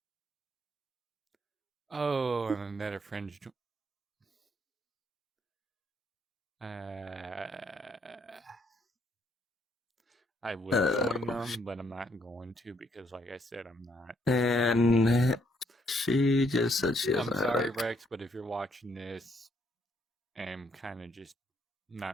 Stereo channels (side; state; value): both; normal; correlation 0.71